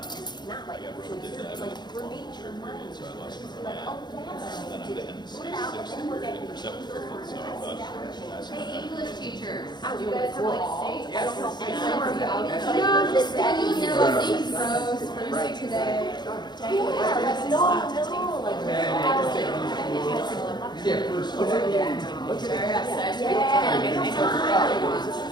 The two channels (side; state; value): right; late; 0.21 ms